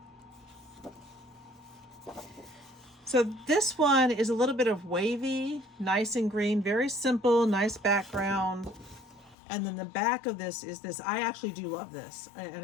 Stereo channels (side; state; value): right; drops out; at 9.3 s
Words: So this one is a little bit of wavy, nice and green, very simple, nice background. And then the back of this is this. I actually do love this. And